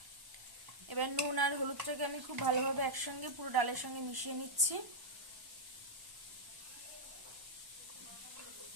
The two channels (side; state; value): left; late; 1.1 ms